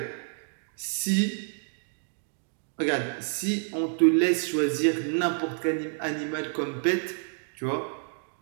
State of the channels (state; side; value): silent; left; 59 dB below the other